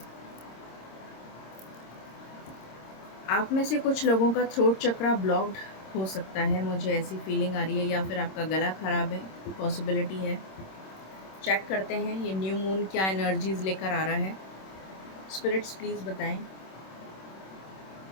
आप में से कुछ लोगों का throat चक्रा blocked हो सकता है, मुझे ऐसी फीलिंग आ रही है, या फिर आपका गला खराब है, पॉसिबिलिटी है। चेक करते हैं ये न्यू मून क्या एनर्जीज लेकर आ रहा है। स्पिरिट्स प्लीज़ बताएं,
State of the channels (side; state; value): right; late; 26 ms